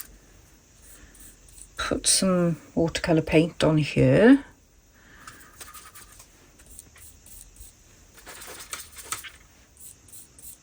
put some watercolour paint on here.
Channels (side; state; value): both; identical; correlation 1.00